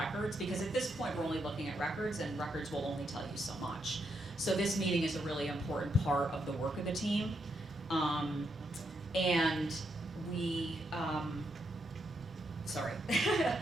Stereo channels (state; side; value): normal; both; correlation 0.80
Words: because at this point we're only looking at records, and records will only tell you so much. So this meeting is a really important part of the work of the team. And we, sorry.